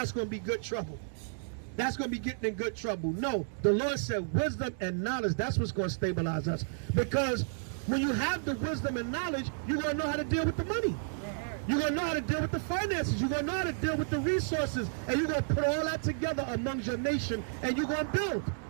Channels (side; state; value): left; silent; digital silence